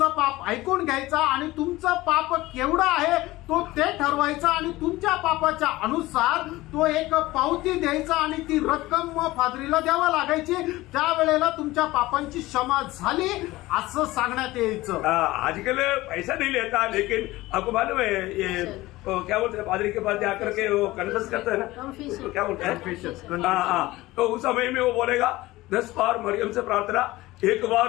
पाप ऐकून घ्यायचा आणि तुमचं पाप केवढं आहे तो ते ठरवायचा आणि तुमच्या पापाच्या अनुसार तो एक पावती द्यायचा आणि ती रक्कम पादरीला द्यावा लागायची. त्यावेळेला तुमच्या पापांची क्षमा झाली असं सांगण्यात यायचं. आजकल पैसा नहीं लेता, लेकिन आपको मालूम है ये क्या बोलते हैं, पादरी के पास जाकर के वो कन्फेस करता है ना, तो क्या बोलते हैं, हाँ, तो उस समय में वो बोलेगा 10 बार मरियम से प्रार्थना, 1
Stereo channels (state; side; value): quieter; right; 18.6 dB